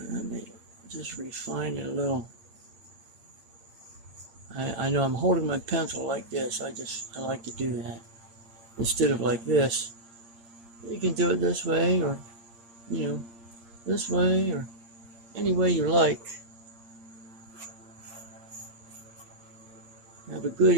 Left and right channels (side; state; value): left; late; 8.7 ms